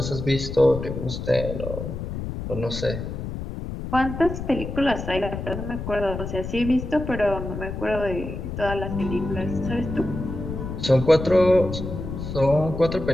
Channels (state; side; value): noise; left; rumble, 6 dB below the sound